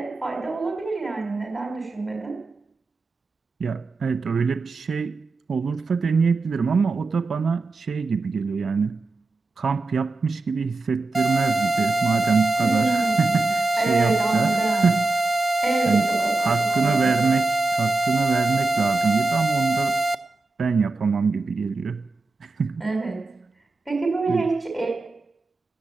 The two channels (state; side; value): quieter; left; 3.3 dB